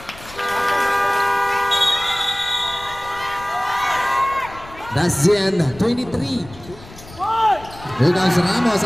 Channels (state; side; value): noise; left; rumble, 19 dB below the sound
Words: That's the end. 23. Here comes Ramos,